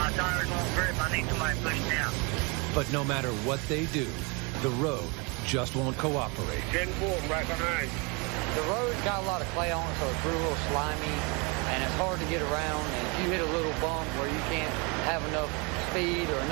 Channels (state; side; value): quieter; left; 30.5 dB